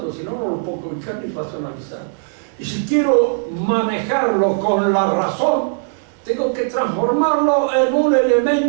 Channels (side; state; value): left; silent; 63 dB below the other